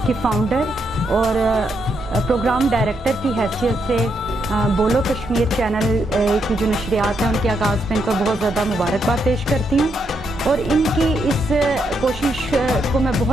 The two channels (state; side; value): normal; both; correlation 0.79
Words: की फ़ाउंडर और प्रोग्राम डायरेक्टर की हैसियत से बोलो कश्मीर चैनल की जो नशरियात हैं उनके आगाज़ में इनको बहुत ज़्यादा मुबारकबाद पेश करती हूँ और इनकी इस कोशिश को मैं